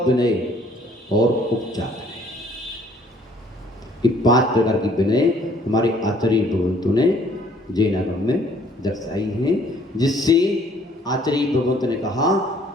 विनय और उपचार विनय, ये 5 प्रकार की विनय हमारे आचार्य भगवंतों ने जैनागम में दर्शाई हैं, जिससे आचार्य भगवंतों ने कहा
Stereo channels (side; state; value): both; normal; correlation 0.60